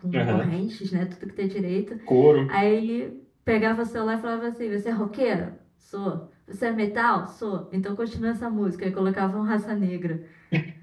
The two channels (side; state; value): both; identical; correlation 1.00